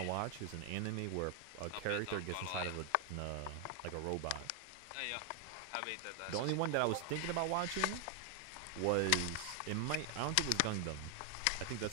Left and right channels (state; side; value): different; both; correlation 0.00